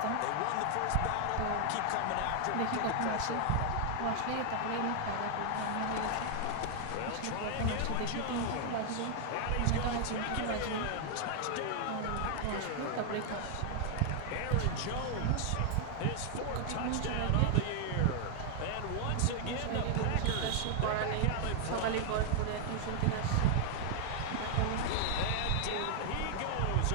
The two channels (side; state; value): both; different; correlation 0.00